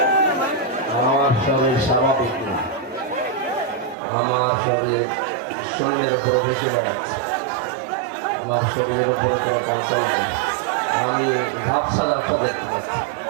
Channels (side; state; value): left; drops out; at 4.0 s